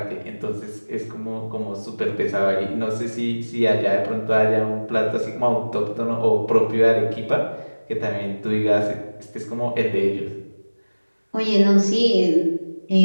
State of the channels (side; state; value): both; inverted; correlation -1.00